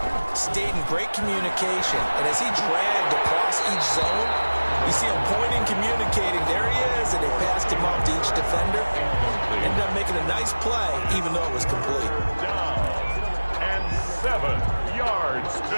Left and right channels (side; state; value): both; inverted; correlation -1.00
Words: stayed in great communication. And as he dragged across each zone, you see him pointing, communicating. There he is, and they passed him off to each defender. Ended up making a nice play, even though it was complete. Down and 7 yards